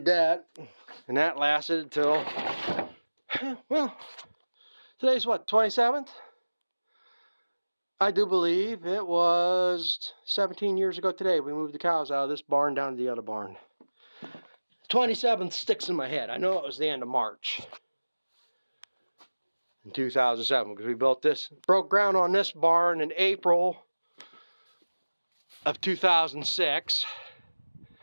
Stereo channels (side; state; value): both; inverted; correlation -1.00